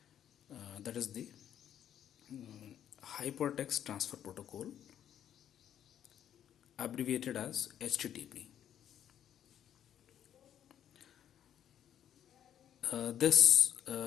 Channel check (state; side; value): quieter; right; 10.1 dB